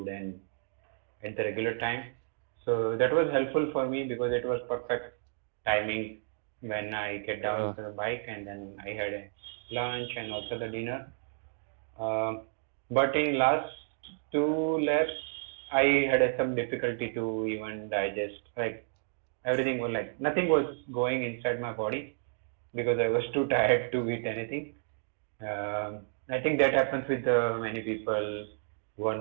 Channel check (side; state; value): left; silent; digital silence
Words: and at the regular time. So that was helpful for me because it was perfect timing when I get down Uh, to the bike and then I had a lunch and also the dinner. Um, but in last two laps, I had some difficulty to even digest. Like everything was like nothing was going inside my body because I was too tired to eat anything. I think that happens with many people who are